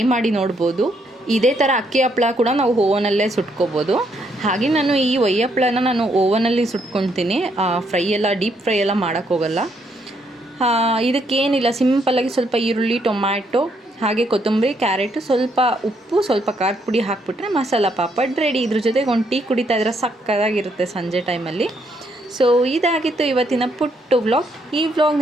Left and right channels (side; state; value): both; normal; correlation 0.73